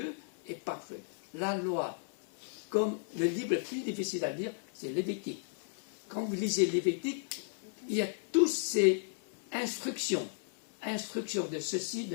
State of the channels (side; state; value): right; silent; 55 dB below the other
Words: est parfaite. La loi, comme le livre le plus difficile à lire, c'est Lévitique. Quand vous lisez Lévitique, il y a toutes ces instructions de ceci,